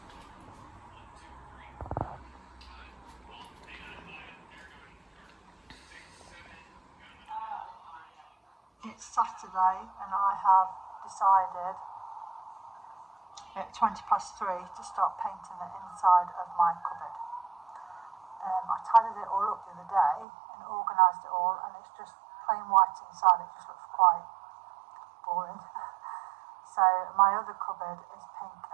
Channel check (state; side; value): drops out; left; at 20.2 s